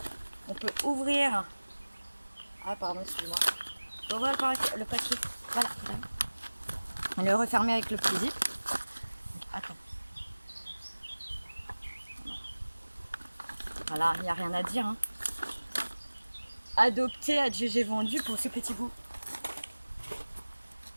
on peut ouvrir. Ah pardon, excuse-moi. On peut ouvrir le paquet. Voilà. On le refermer avec le petit zip. Attends. Voilà, il n'y a rien à dire. Hein. Adopté, adjugé, vendu pour ce petit bout.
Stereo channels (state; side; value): inverted; both; correlation -1.00